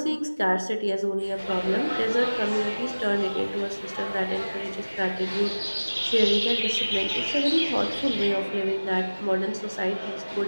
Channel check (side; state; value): both; inverted; correlation -1.00